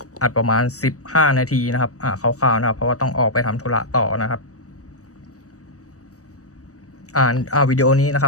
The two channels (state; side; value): late; right; 0.66 ms